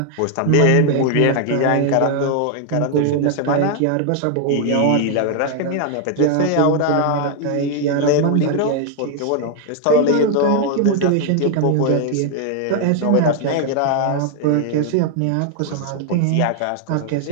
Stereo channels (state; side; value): different; both; correlation 0.00